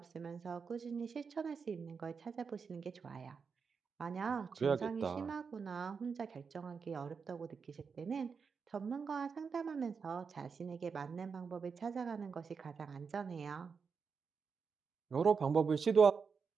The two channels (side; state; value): left; quieter; 5.7 dB